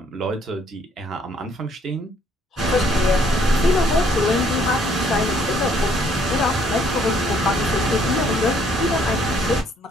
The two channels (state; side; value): normal; both; correlation 0.65